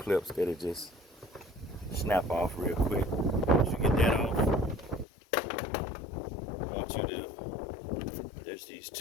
that'll just snap off real quick. Once you get that off, I want you to, there's these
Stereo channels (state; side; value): drops out; right; at 5.1 s